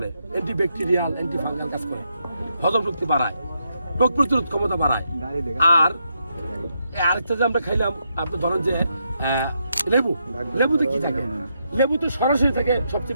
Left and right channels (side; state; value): both; inverted; correlation -0.81